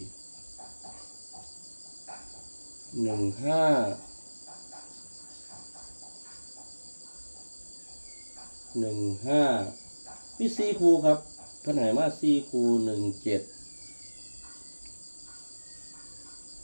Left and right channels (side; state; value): both; inverted; correlation -1.00